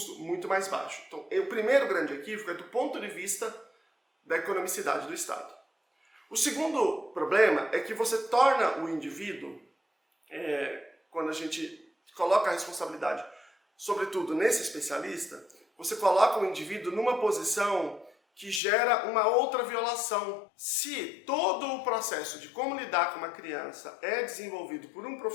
muito mais baixo. Então o primeiro grande equívoco é do ponto de vista da economicidade do Estado. O segundo problema é que você torna o indivíduo, quando a gente coloca a responsabilidade, sobretudo nesse especialista, você coloca o indivíduo numa posição que gera uma outra violação. Se todo o processo de como lidar com uma criança é desenvolvido por um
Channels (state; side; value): drops out; right; at 18.6 s